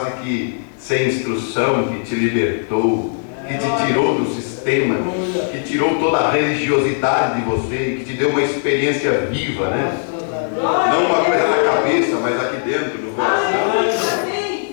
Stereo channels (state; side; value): silent; right; 65 dB below the other